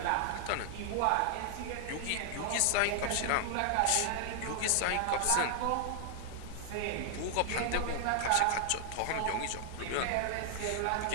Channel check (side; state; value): both; different; correlation 0.00